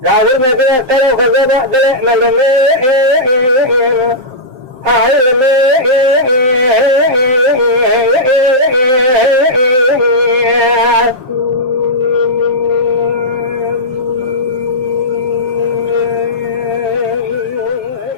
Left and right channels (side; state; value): left; late; 7.6 ms